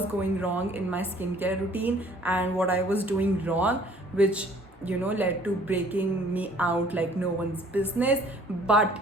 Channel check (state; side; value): normal; both; correlation 0.56